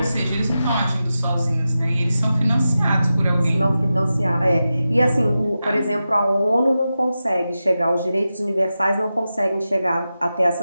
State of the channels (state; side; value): inverted; both; correlation -0.92